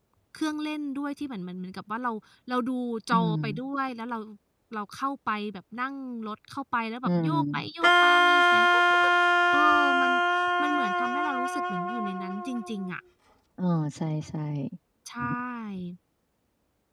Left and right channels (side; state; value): both; identical; correlation 1.00